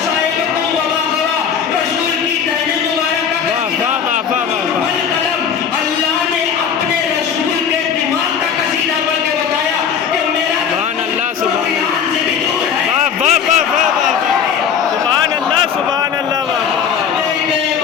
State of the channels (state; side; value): quieter; right; 7.5 dB